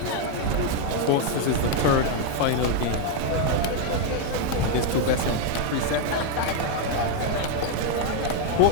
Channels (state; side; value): different; both; correlation 0.01